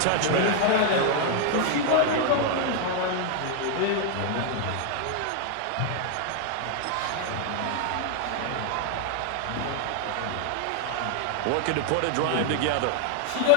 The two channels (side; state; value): both; different; correlation 0.00